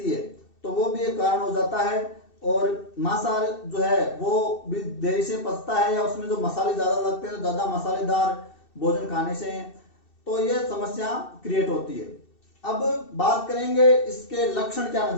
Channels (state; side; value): late; right; 2.7 ms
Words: है, तो वो भी एक कारण हो जाता है। और मांसाहार जो है वो भी देरी से पचता है, या उसमें जो मसाले ज्यादा लगते हैं, ज्यादा मसालेदार भोजन खाने से, तो ये समस्या क्रिएट होती है। अब बात करेंगे इसके लक्षण क्या